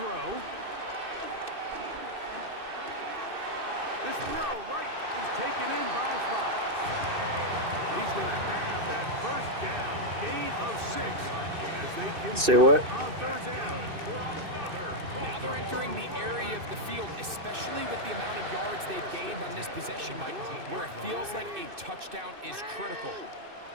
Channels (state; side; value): late; left; 2.6 ms